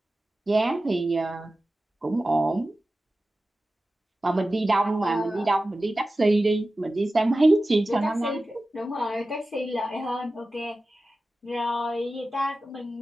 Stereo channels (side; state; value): both; normal; correlation 0.95